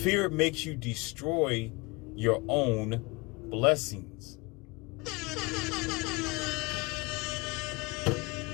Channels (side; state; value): right; quieter; 26.3 dB